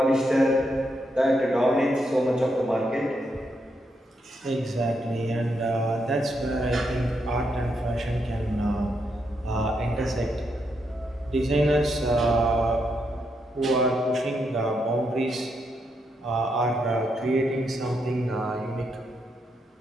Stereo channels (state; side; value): normal; both; correlation 0.80